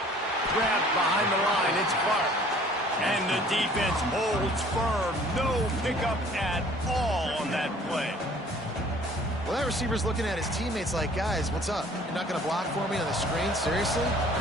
Grabbed behind the line, it's Clark. And the defense holds firm. No pickup at all on that play. Well, that receiver's looking at his teammates like, guys, what's up? You're not going to block for me on the screen? Seriously?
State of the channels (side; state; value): both; normal; correlation 0.53